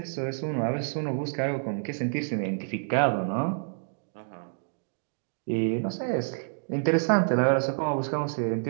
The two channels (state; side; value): silent; left; digital silence